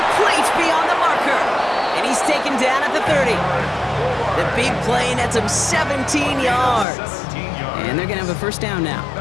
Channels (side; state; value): right; drops out; at 6.9 s